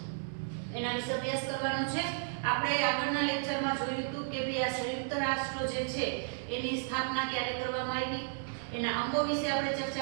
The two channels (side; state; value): left; silent; digital silence